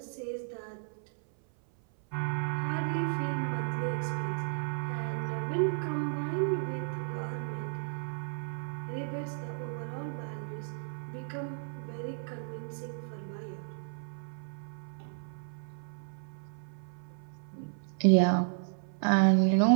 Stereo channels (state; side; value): silent; left; 56 dB below the other